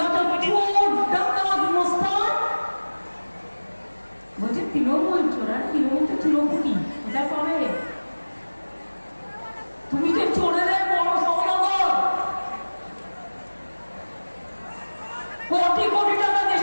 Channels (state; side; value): inverted; both; correlation -1.00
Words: ডাকাত মোস্তান বলছে তৃণমূল চোরা, তৃণমূল তো তৃণমূলই, কোথায় পাবে? তুমি তো চোরেদের বড় সহযোগী। কোটি কোটি টাকা